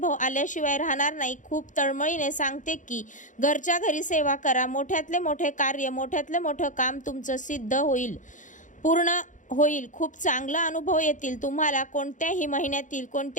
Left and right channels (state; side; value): late; right; 0.37 ms